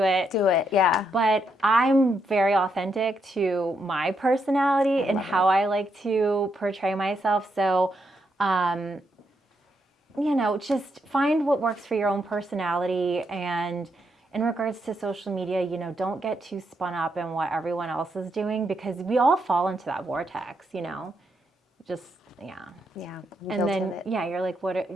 it. Do it, yeah. But I'm very authentic to my personality and how I like to portray myself. So, just find what works for your own personality. And in regards to social media, don't get too spun up in what everyone else is doing, because we all fall into that vortex, just, yeah. Yeah. And then, you're like,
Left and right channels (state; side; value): normal; both; correlation 0.79